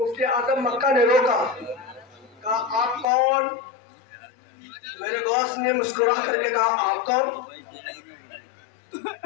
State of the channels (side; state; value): right; drops out; at 3.1 s